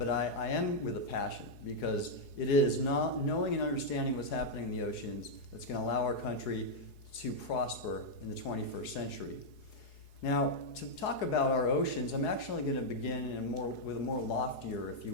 I am with a passion, because it is not knowing and understanding what's happening in the oceans that's going to allow our country to prosper in the 21st century. Now, to talk about our oceans, I'm actually going to begin with a more loftier, if you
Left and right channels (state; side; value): late; right; 4.8 ms